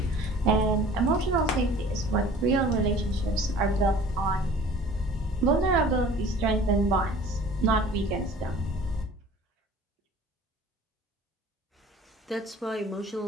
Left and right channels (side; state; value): both; normal; correlation 0.47